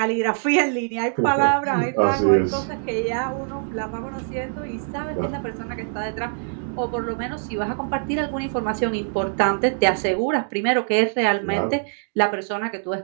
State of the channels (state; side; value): silent; left; digital silence